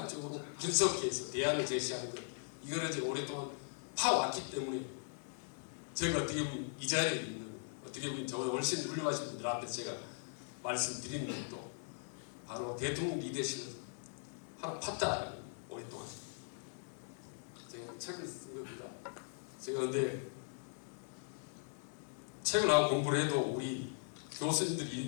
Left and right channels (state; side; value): silent; right; 51 dB below the other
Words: 분석해서 대안을 제시하는 것, 이거를 제가 오랫동안 파왔기 때문에 제가 어떻게 보면 이 자리에 있는, 어떻게 보면 저보다 훨씬 훌륭하신 분들 앞에 제가 말씀드리는 것도 바로 대통령 리더십을 하나 팠다. 오랫동안 제가 책을 쓴 겁니다. 제가 근데 책을 하고 공부를 해도 우리 교수님들이